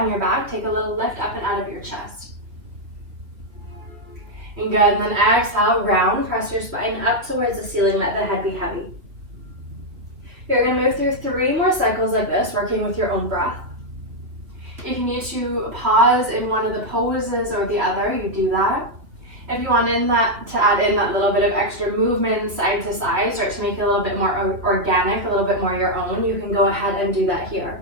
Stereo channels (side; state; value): left; late; 2.8 ms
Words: your back, take a little lift up and out of your chest. And good, and then exhale, round, press your spine up towards the ceiling, let the head be heavy. You're gonna move through 3 more cycles like this, working with your own breath. If you need to pause in one of the poses or the other, you do that. If you want to add in that little bit of extra movement side to side, start to make it a little bit more organic, a little bit more your own, you can go ahead and do that here.